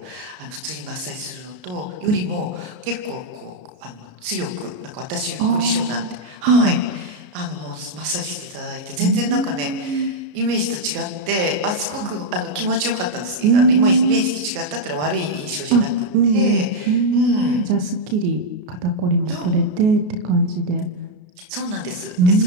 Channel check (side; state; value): left; late; 33 ms